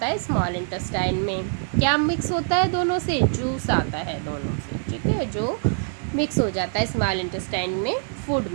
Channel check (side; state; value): left; silent; digital silence